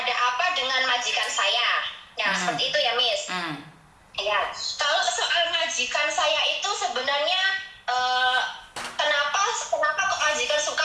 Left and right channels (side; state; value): both; identical; correlation 1.00